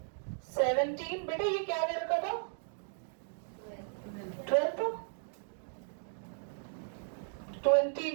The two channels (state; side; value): silent; left; digital silence